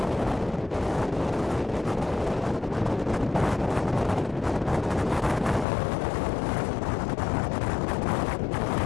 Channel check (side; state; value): right; drops out; at 5.7 s